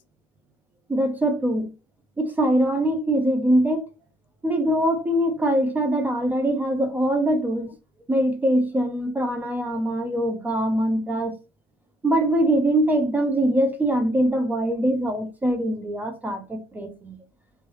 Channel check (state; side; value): normal; both; correlation 0.70